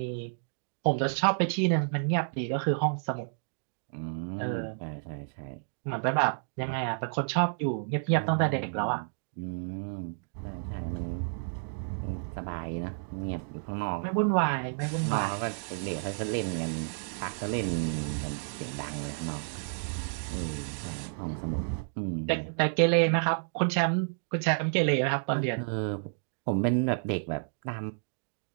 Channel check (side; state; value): left; silent; digital silence